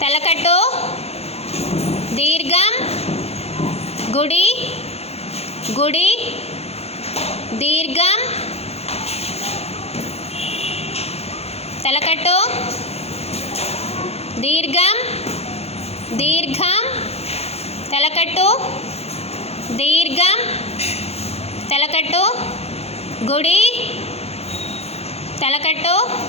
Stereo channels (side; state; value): right; late; 0.30 ms